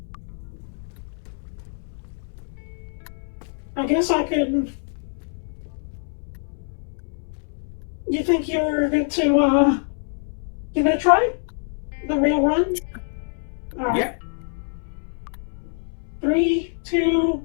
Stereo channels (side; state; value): right; silent; 61 dB below the other